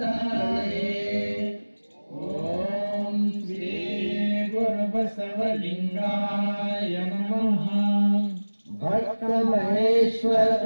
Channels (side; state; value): both; inverted; correlation -1.00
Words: ಓಂ ಶ್ರೀ ಗುರು ಬಸವಲಿಂಗಾಯ ನಮಃ. ಭಕ್ತ ಮಹೇಶ್ವರ